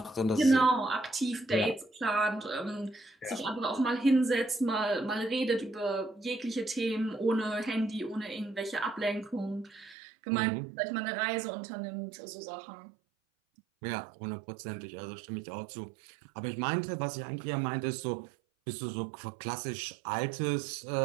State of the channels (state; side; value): drops out; left; at 10.0 s